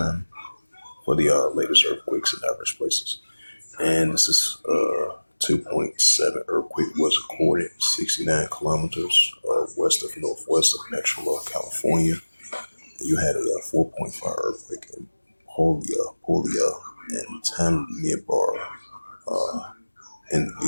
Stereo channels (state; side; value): inverted; both; correlation -1.00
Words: for the latest earthquakes in diverse places. And this is 2.7 earthquake was recorded 69 kilometers west of northwest of Petrola, California. You had a 4.5 earthquake in Polia and Tanimbar,